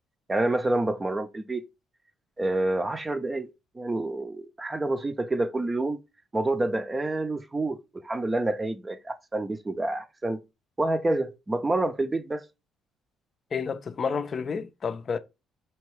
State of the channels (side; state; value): both; normal; correlation 0.92